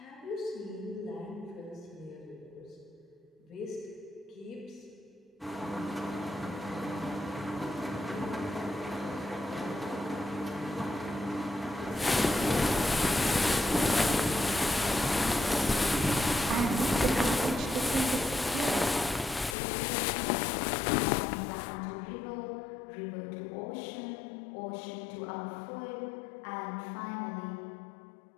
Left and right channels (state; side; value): drops out; right; at 19.6 s